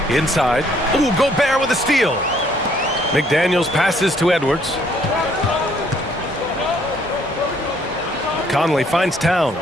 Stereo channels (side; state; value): both; normal; correlation 0.65